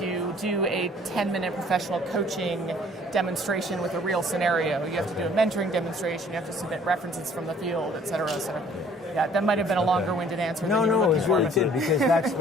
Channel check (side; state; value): both; normal; correlation 0.56